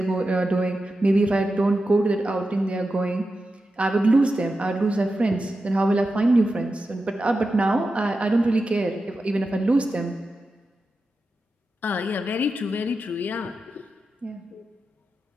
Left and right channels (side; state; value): both; normal; correlation 0.91